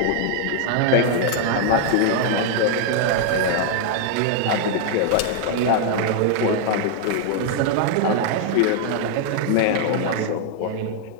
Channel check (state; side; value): different; both; correlation 0.00